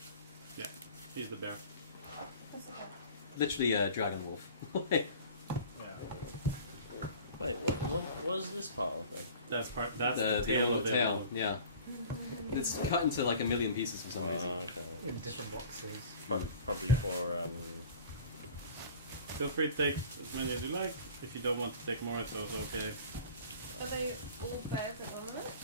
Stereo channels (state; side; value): inverted; both; correlation -0.43